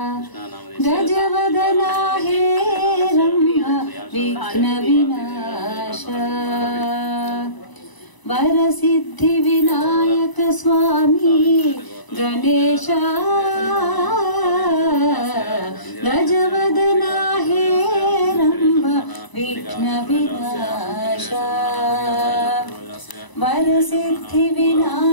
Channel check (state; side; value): late; right; 1.0 ms